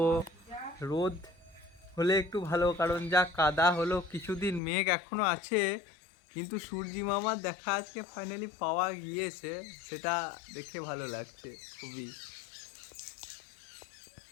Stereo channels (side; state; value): right; drops out; at 4.6 s